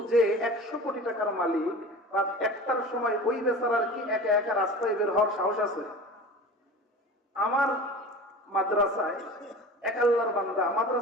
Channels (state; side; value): normal; both; correlation 0.36